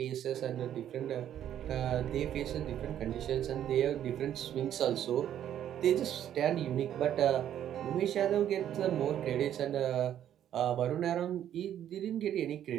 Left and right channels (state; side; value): quieter; left; 10.7 dB